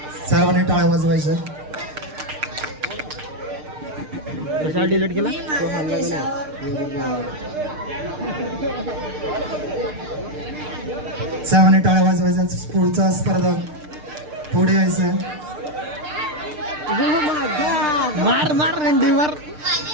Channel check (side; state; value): left; late; 6.6 ms